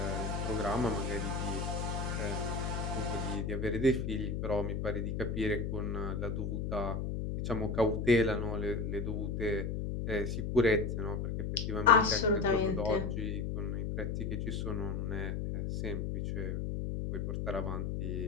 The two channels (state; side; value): noise; left; hum, 2 dB below the sound